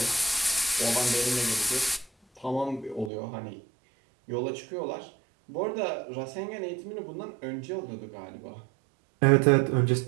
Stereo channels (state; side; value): drops out; left; at 3.1 s